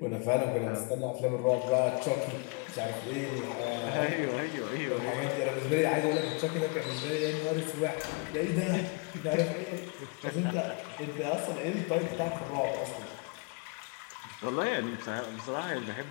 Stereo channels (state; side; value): quieter; right; 30.8 dB